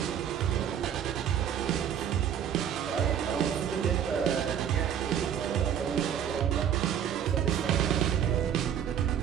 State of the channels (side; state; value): left; quieter; 9.1 dB